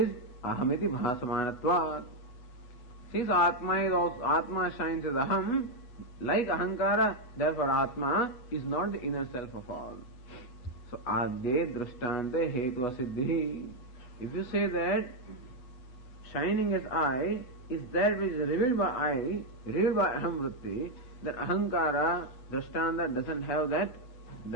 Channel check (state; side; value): late; right; 8.1 ms